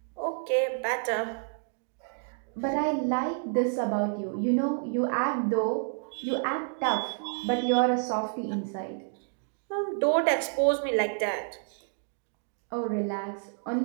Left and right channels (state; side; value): silent; left; 58 dB below the other